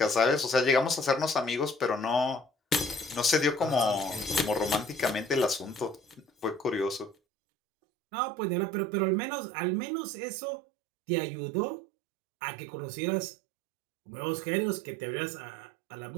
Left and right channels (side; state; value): left; drops out; at 7.2 s